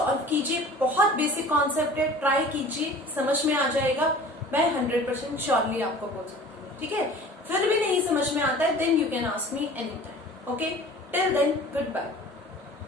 कीजिए, बहुत बेसिक कॉन्सेप्ट है, ट्राई कीजिए, समझ में आ जाएगा। मैं 100% श्योरली आपको बोल सकती हूँ, ठीक है। फिर भी नहीं समझ में आता है, then you can ask me any time. Okay, till then good bye.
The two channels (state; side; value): normal; both; correlation 0.44